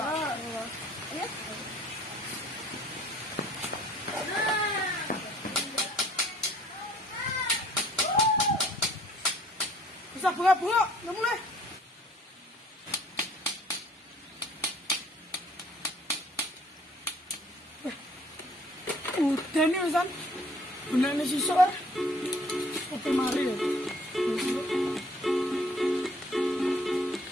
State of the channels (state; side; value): normal; both; correlation 0.57